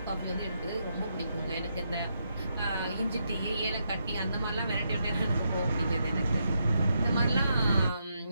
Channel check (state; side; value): inverted; both; correlation -0.81